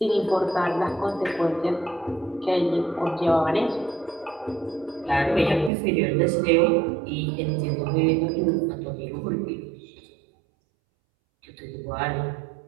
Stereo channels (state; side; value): drops out; left; at 5.7 s